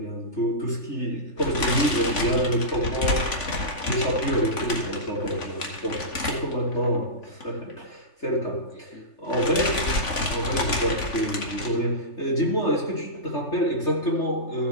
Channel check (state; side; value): late; right; 3.5 ms